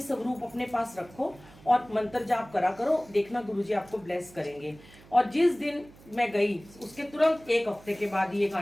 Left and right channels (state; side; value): noise; right; hum, 23 dB below the sound